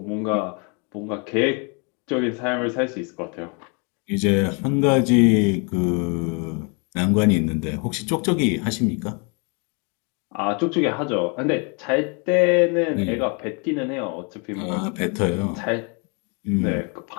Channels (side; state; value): right; quieter; 34.8 dB